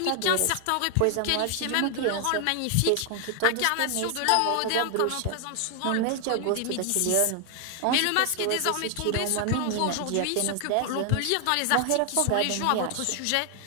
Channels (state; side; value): different; both; correlation 0.00